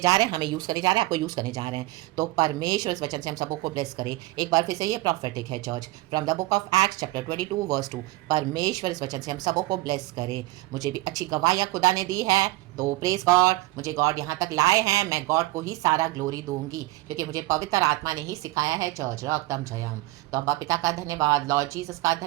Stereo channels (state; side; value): quieter; left; 18.8 dB